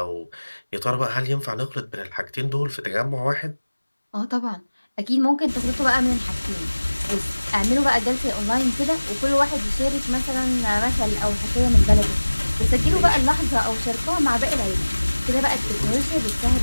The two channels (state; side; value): inverted; both; correlation -1.00